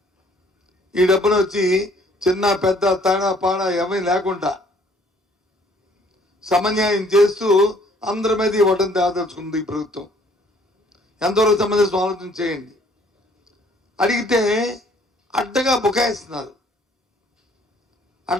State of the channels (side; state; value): both; normal; correlation 0.60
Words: ఈ డబ్బును వచ్చి చిన్న పెద్ద తేడా పాడ ఏమీ లేకుండా సమన్యాయం చేస్తూ అందరి మీద ఇవ్వడం తేదలుచుకుంది ఈ ప్రభుత్వం. ఎంతవరకు సంబంధించిన ఆలోచన చేయండి. అడిగితే అడ్డగా బుకాయిస్తున్నారు.